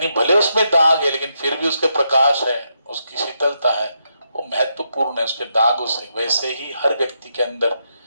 भले उसमें दाग है, लेकिन फिर भी उसके प्रकाश है, उसकी शीतलता है, वो महत्वपूर्ण है उसके दागों से। वैसे ही हर व्यक्ति के अंदर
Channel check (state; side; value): inverted; both; correlation -0.81